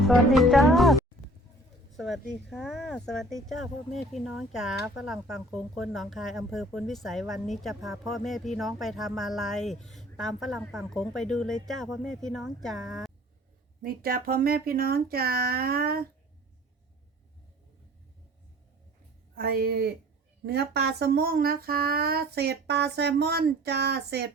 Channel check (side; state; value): both; normal; correlation 0.50